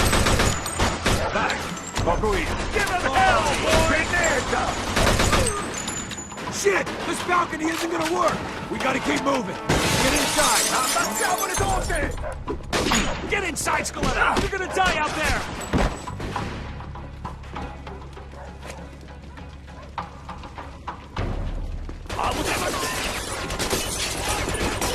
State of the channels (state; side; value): identical; both; correlation 1.00